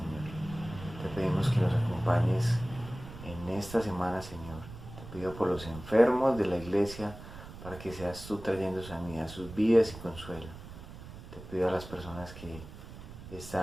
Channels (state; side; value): noise; right; rumble, 14 dB below the sound